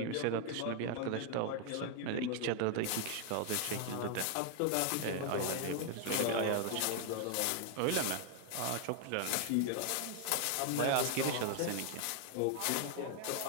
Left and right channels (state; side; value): different; both; correlation 0.00